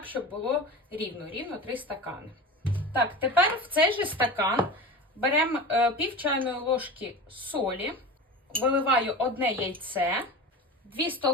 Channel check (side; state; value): both; normal; correlation 0.30